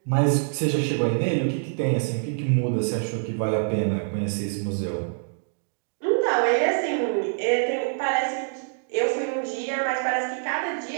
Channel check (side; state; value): left; silent; digital silence